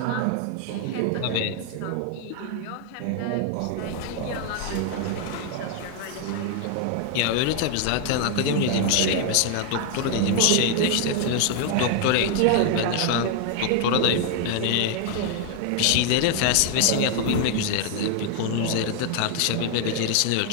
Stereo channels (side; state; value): both; different; correlation 0.00